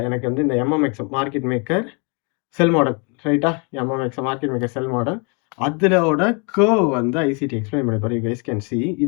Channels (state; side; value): quieter; right; 34.1 dB